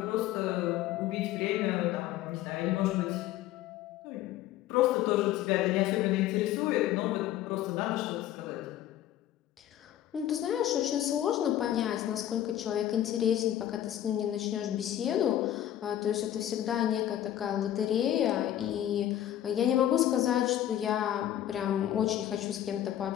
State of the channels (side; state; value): right; quieter; 12.2 dB